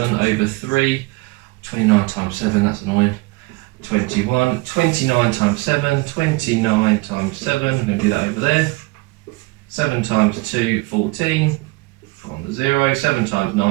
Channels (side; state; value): left; quieter; 23.7 dB